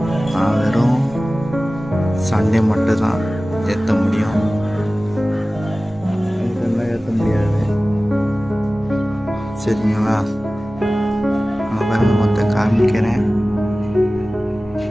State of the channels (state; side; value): normal; both; correlation 0.97